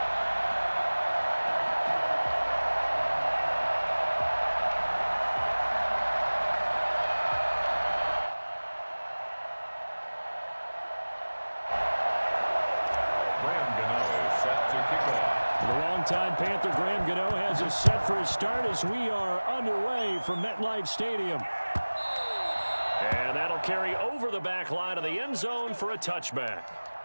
Time Panther Graham Gano has us set for a start as we are underway from MetLife Stadium. And that'll carry over the back line of the end zone for a touchback.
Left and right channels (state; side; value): inverted; both; correlation -1.00